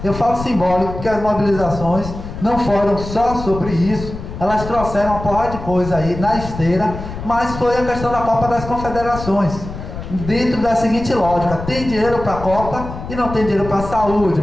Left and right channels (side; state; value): left; noise; rumble, 10 dB below the sound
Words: eu falo simbólico porque as mobilizações não foram só sobre isso, elas trouxeram uma porrada de coisa aí na esteira, mas foi a questão da Copa das Confederações, dentro da seguinte lógica: tem dinheiro para a Copa e não tem dinheiro para a saúde,